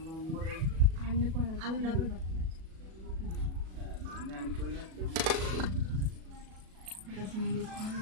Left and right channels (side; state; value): left; late; 37 ms